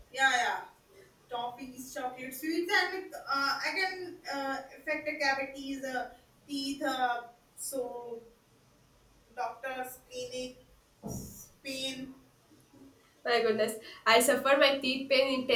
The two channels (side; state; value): both; identical; correlation 1.00